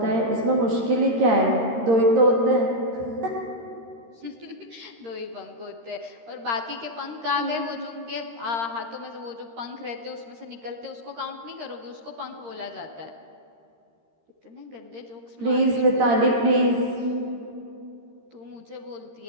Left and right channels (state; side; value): late; left; 13 ms